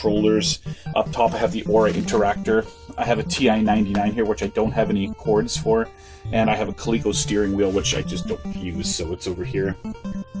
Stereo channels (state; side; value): identical; both; correlation 1.00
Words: Up top I have the Aura Interactor. I have a TI-99 here, which I don't have any cords for. And I have a Coleco steering wheel, which I just don't use, so it's over here.